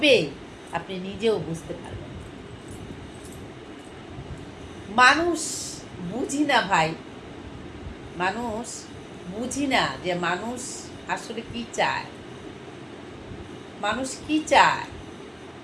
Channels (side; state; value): both; identical; correlation 1.00